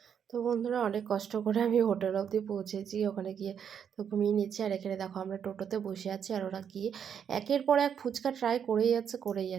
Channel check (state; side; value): quieter; left; 8.0 dB